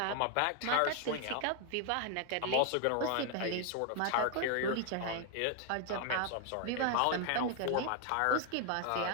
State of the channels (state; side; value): different; both; correlation 0.01